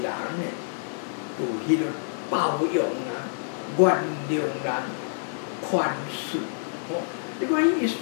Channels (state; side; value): silent; right; digital silence